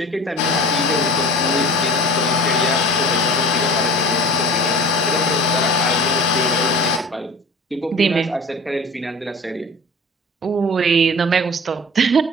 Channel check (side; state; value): both; normal; correlation 0.40